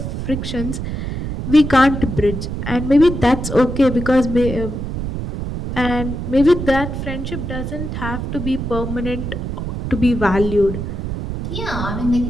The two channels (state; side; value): noise; right; rumble, 5 dB below the sound